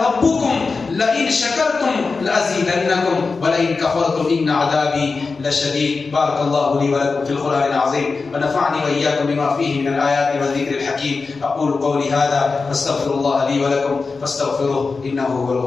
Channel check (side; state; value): right; quieter; 4.3 dB